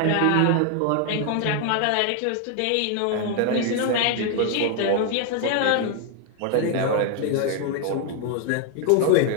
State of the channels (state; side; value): different; both; correlation 0.01